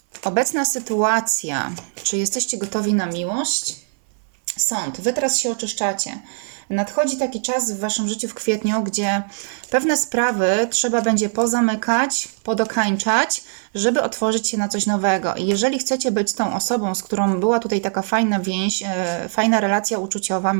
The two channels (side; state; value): left; silent; 59 dB below the other